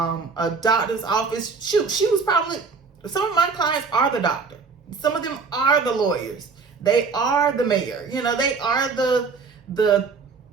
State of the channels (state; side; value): quieter; left; 4.8 dB